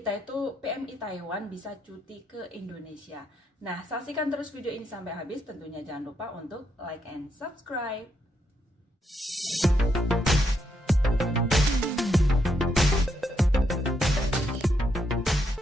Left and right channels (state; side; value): normal; both; correlation 0.78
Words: itu PMI Taiwan bisa cuti ke Indonesia. Nah, saksikan terus video ini sampai habis. Tentunya jangan lupa untuk like and subscribe.